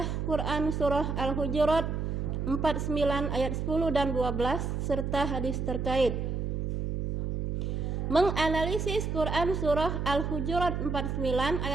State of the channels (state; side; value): noise; right; hum, 2 dB below the sound